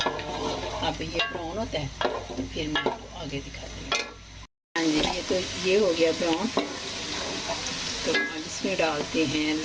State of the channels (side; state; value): both; identical; correlation 1.00